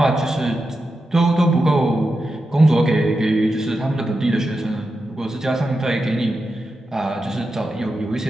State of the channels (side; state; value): both; normal; correlation 0.89